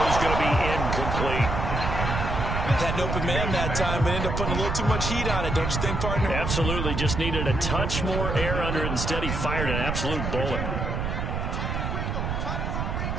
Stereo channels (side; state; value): right; noise; rumble, 2 dB below the sound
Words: is going to be incomplete. Had an open man that time, but ended up putting a little too much heat on it, don't you think, partner? Absolutely. Just needed a touch more air under it. Instead, he fired an absolute bullet.